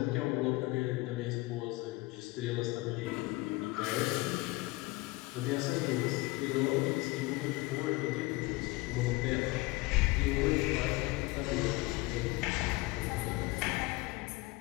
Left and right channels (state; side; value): quieter; right; 21.2 dB